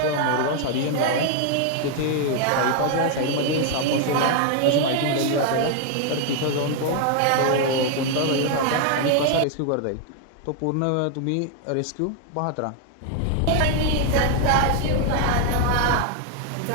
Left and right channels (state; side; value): different; both; correlation 0.00